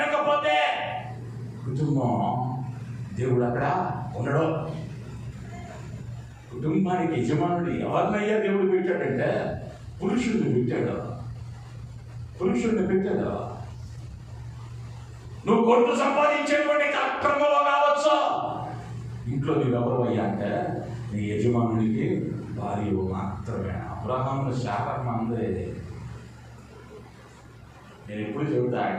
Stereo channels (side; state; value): both; identical; correlation 1.00